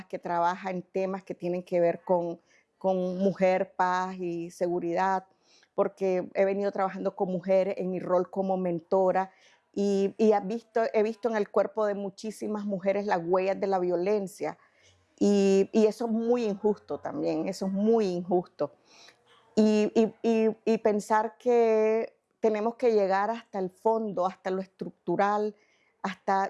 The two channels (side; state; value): both; identical; correlation 1.00